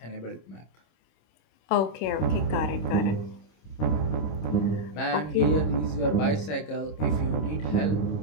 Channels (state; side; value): late; right; 26 ms